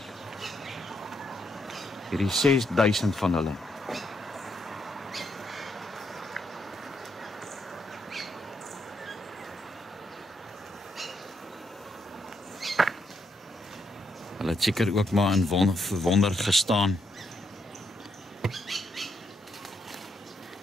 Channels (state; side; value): normal; both; correlation 0.77